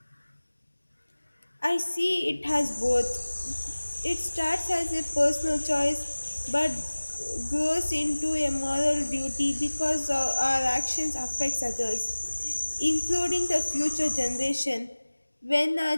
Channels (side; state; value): both; inverted; correlation -1.00